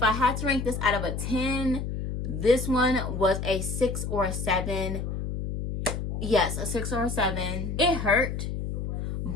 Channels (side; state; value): left; noise; hum, 4 dB below the sound